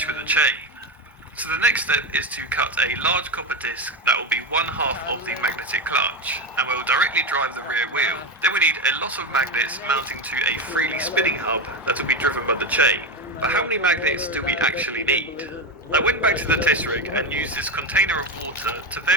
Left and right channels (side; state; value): both; normal; correlation 0.15